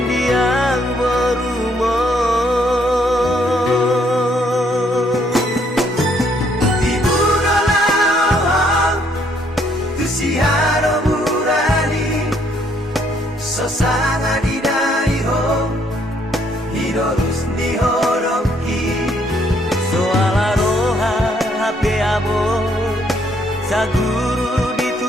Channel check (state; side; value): normal; both; correlation 0.68